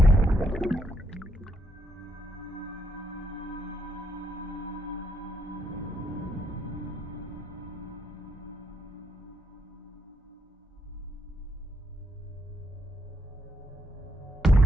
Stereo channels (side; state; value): both; normal; correlation 0.78